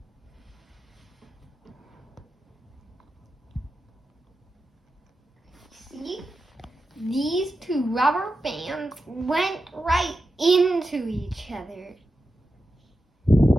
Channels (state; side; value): normal; both; correlation 0.90